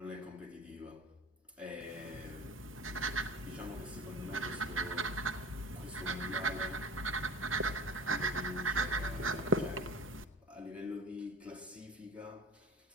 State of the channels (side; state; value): both; normal; correlation 0.36